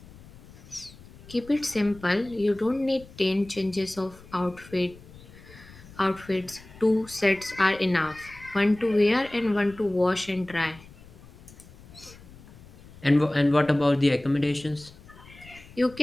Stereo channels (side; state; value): left; noise; rumble, 21 dB below the sound